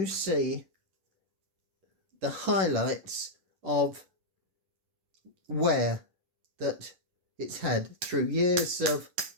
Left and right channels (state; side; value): late; left; 10 ms